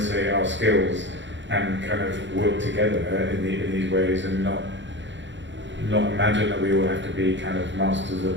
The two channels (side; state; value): left; late; 0.54 ms